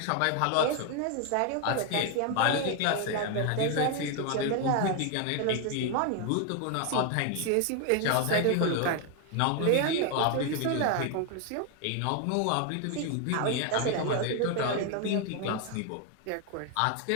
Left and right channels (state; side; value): different; both; correlation 0.01